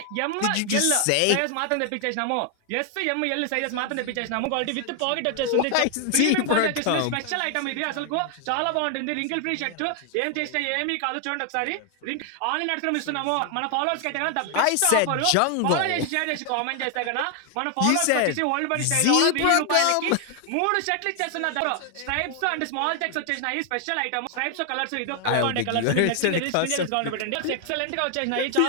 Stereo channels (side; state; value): both; different; correlation 0.00